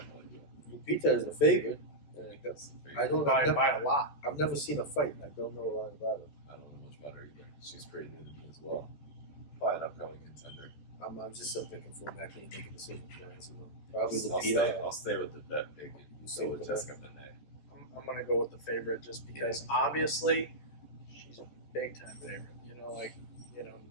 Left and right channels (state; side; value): late; right; 14 ms